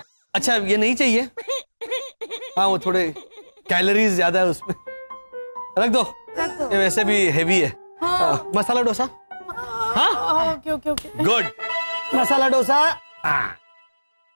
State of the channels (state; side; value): inverted; both; correlation -1.00